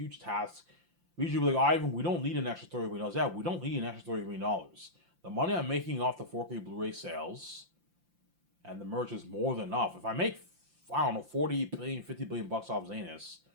task. We usually be like, Ivan, we don't need an extra $30 million. Yeah, we don't need an extra $30 million. The money I'm making off the 4K Blu-ray sales and the merch is more than enough. If I make, I don't know, 40 billion, 50 billion bucks off Zanus,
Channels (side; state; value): left; late; 5.8 ms